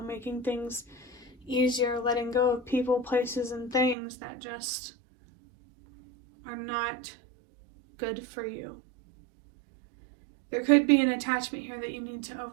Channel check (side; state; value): left; drops out; at 4.0 s